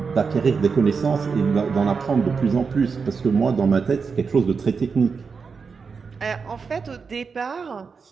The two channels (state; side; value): quieter; left; 5.3 dB